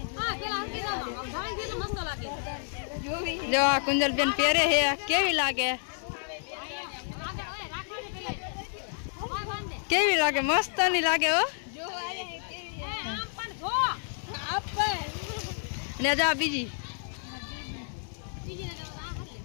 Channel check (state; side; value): silent; right; 57 dB below the other